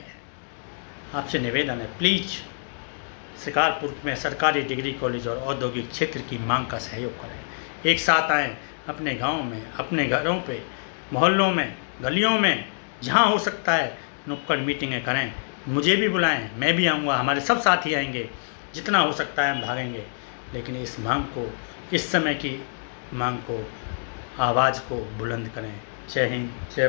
आपसे निवेदन है, प्लीज़ शिकारपुर में सरकारी डिग्री कॉलेज और औद्योगिक क्षेत्र की मांग का सहयोग करें। एक साथ आएँ, अपने गांव में, अपने घरों पे, मोहल्लों में, गलियों में, जहां हो सकता है नुक्कड़ मीटिंगें करें। मुझे भी बुलाएं, मैं भी आऊँगा, हमारे सब साथी आएंगे। जितना हो सकता है हम भागेंगे, लेकिन इस मांग को, इस समय की मांग को, आवाज़ को बुलंद करें। जय हिंद, जय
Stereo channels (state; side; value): silent; right; digital silence